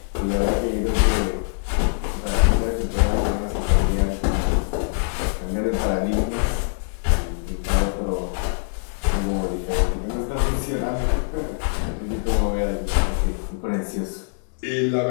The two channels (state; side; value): silent; right; 63 dB below the other